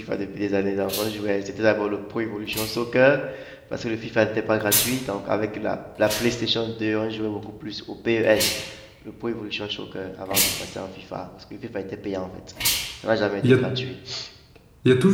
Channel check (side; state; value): both; identical; correlation 1.00